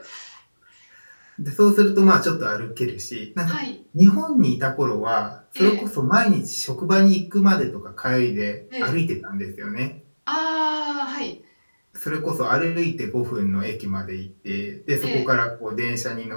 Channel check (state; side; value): inverted; both; correlation -1.00